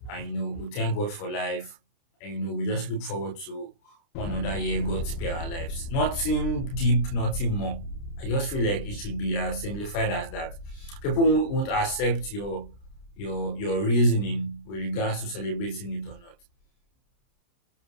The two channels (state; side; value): late; right; 30 ms